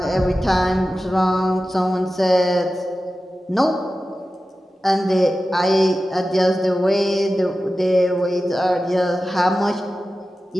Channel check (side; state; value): both; normal; correlation 0.94